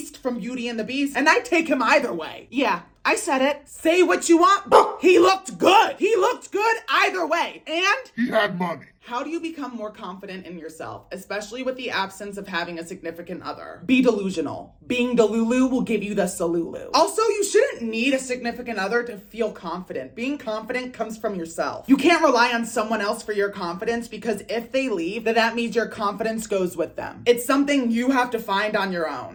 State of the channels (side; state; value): both; identical; correlation 1.00